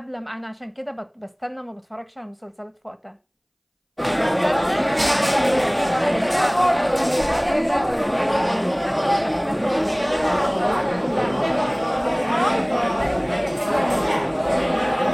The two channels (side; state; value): both; identical; correlation 1.00